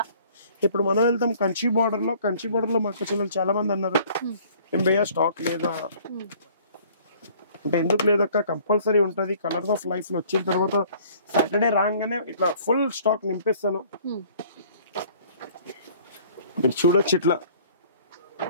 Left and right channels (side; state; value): both; inverted; correlation -0.55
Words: ఇప్పుడు మనం వెళ్తాం కంచి బార్డర్ లో. కంచి బార్డర్ లో మా అక్క చెల్లెలు చాలా మంది అన్నారు ఎంబయ్య స్టాక్ లేదా అంటే, ఎందుకు లేదక్క కంపల్సరీ ఉంటది. కలర్స్ ఆఫ్ లైఫ్ లో వచ్చిన తర్వాత సాటర్డే రాగానే ఇట్లా ఫుల్ స్టాక్ నింపేస్తాను. మీరు చూడొచ్చు ఇట్లా